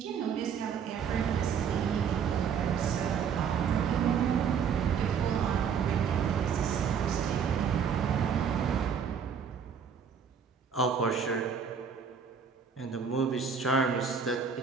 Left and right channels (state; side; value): quieter; left; 6.9 dB